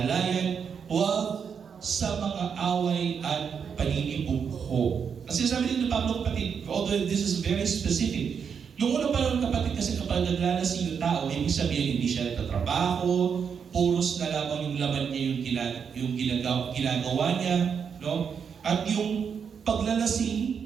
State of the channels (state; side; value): quieter; left; 6.8 dB